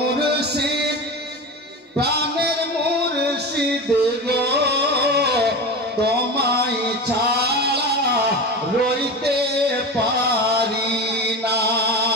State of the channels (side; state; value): both; normal; correlation 0.26